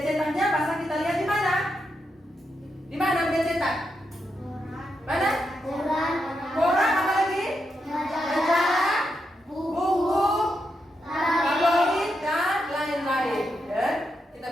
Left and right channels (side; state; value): both; normal; correlation 0.84